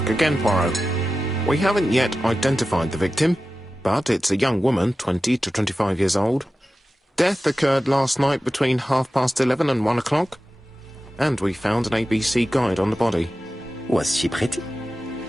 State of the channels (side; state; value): both; normal; correlation 0.94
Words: again, Poirot. We haven't yet identified the victim, but it's a young woman, 20 to 25 years old. Death occurred last night between 11:30 and 1 o'clock, and we found an ABC guide on the body. Was she pretty?